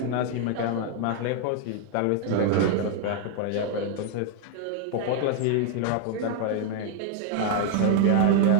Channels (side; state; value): both; different; correlation 0.00